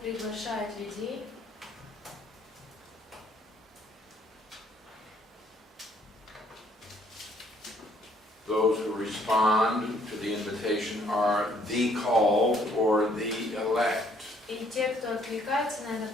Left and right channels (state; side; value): normal; both; correlation 0.64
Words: приглашает людей. Those who respond to the invitation are the called or the elect. И те, кто откликается на это